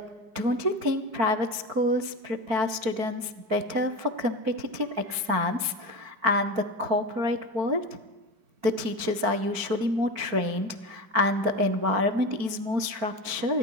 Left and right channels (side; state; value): left; late; 4.5 ms